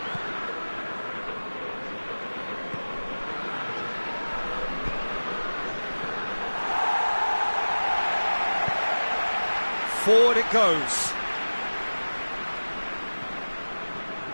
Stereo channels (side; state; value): both; inverted; correlation -1.00